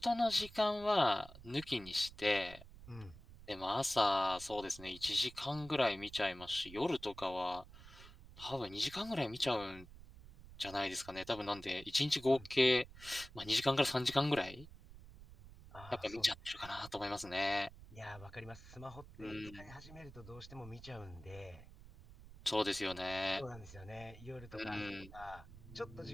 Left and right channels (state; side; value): noise; right; rumble, 17 dB below the sound